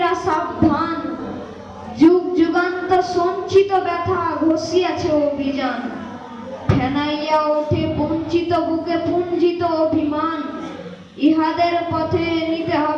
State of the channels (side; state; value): both; identical; correlation 1.00